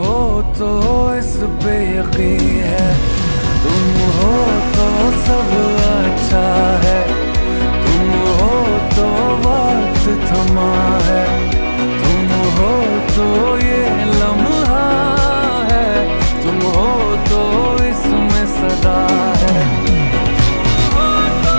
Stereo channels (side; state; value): both; inverted; correlation -1.00